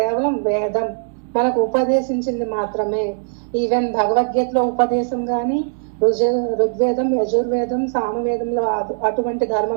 వేదం మనకు ఉపదేశించింది మాత్రమే. ఈవెన్ భగవద్గీతలో ఉపదేశం గాని, ఋగ్వేదం, యజుర్వేదం, సామవేదంలో అటువంటి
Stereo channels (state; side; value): silent; left; digital silence